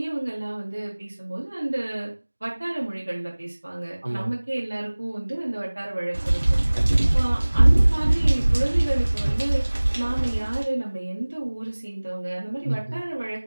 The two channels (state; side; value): inverted; both; correlation -1.00